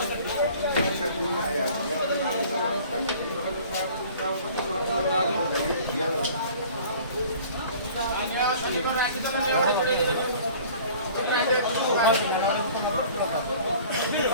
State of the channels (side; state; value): both; inverted; correlation -0.48